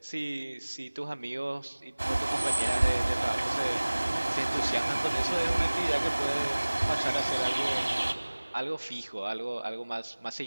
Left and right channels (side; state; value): both; inverted; correlation -1.00